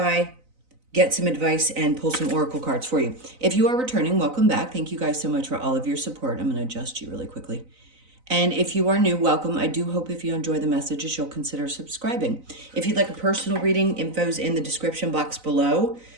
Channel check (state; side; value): late; left; 3.9 ms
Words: get some advice, and pull some oracle cards for you. If you are returning, welcome back. Thank you guys so much for all of your support. I'm going to adjust you really quickly. And if you are new, welcome. I do hope if you enjoy the messages, you'll consider subscribing. If you'd like a personal reading, info's in the description box below.